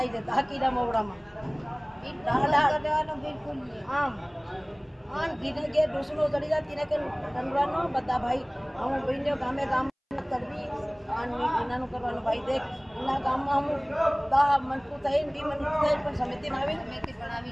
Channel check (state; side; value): identical; both; correlation 1.00